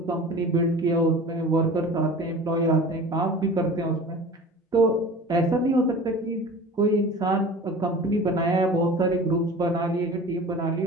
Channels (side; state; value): both; normal; correlation 0.39